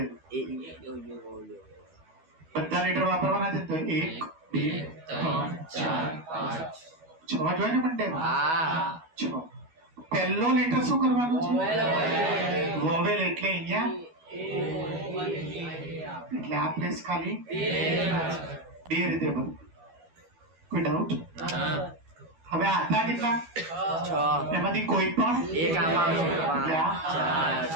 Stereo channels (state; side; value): late; left; 12 ms